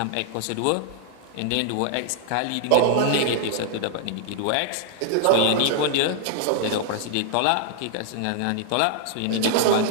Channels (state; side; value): different; both; correlation 0.00